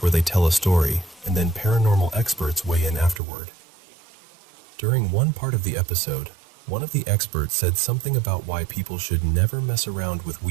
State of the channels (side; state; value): left; drops out; at 3.2 s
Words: where they tell a story and then paranormal experts weigh in afterward. During one part of the episode, one of the experts said something about why people should never mess around with